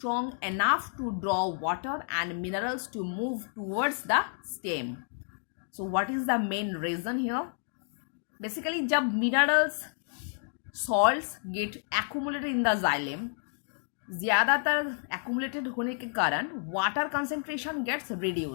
enough to draw water and minerals to move towards the stem. So what is the main reason here? Basically, जब minerals salts get accumulated in the xylem, ज़्यादातर accumulated होने के कारण water concentration gets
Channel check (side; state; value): right; silent; 58 dB below the other